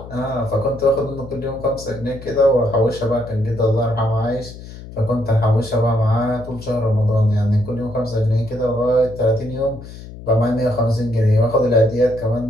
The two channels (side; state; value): left; noise; hum, 14 dB below the sound